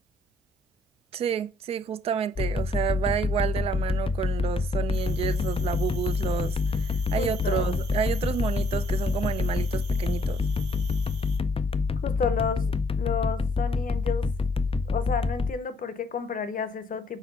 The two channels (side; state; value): both; normal; correlation 0.66